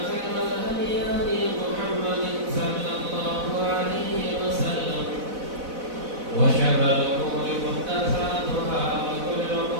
خير الهدي هدي محمد صلى الله عليه وسلم وشر الأمور محدثاتها وكل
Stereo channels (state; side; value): late; left; 4.0 ms